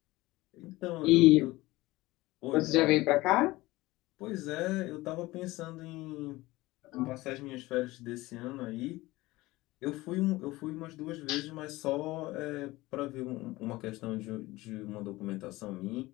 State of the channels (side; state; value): right; quieter; 19.5 dB